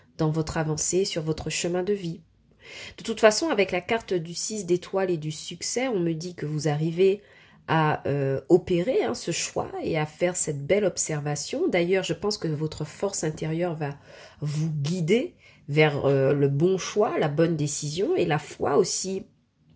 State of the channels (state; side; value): identical; both; correlation 1.00